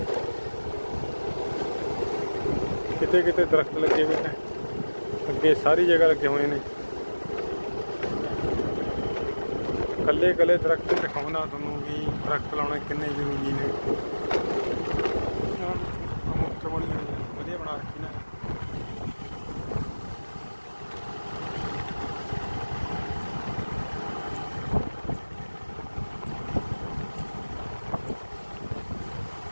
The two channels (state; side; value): inverted; both; correlation -1.00